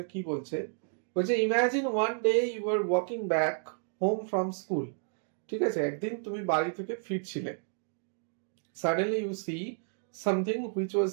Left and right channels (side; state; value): left; silent; digital silence